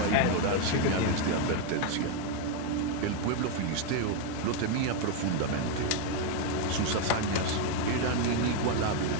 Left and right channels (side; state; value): both; different; correlation 0.01